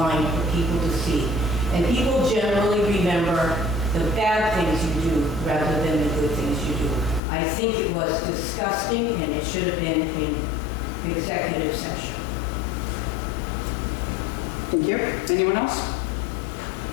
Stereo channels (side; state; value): right; drops out; at 7.2 s